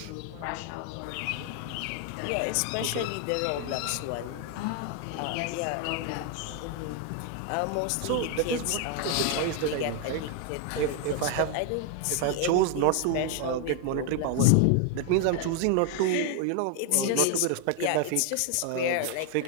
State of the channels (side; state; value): both; different; correlation 0.00